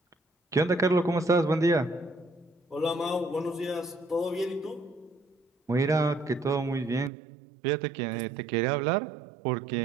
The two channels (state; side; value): drops out; left; at 7.1 s